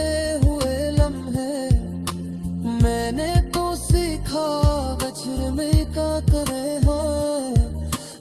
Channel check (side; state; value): both; identical; correlation 1.00